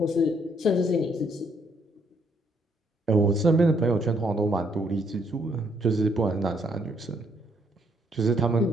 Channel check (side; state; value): both; normal; correlation 0.71